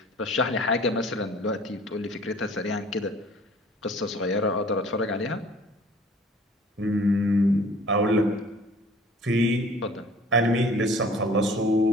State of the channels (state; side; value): normal; both; correlation 0.50